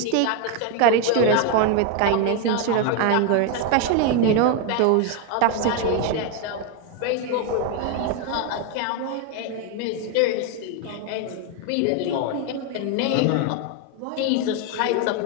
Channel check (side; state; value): both; different; correlation 0.01